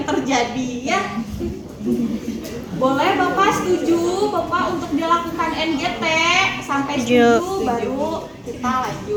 terjadi ya. Boleh Bapak setuju Bapak untuk dilakukan NGT? Sampai setuju baru kita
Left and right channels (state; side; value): identical; both; correlation 1.00